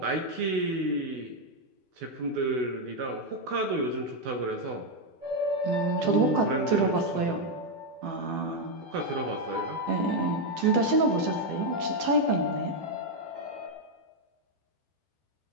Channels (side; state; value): left; late; 12 ms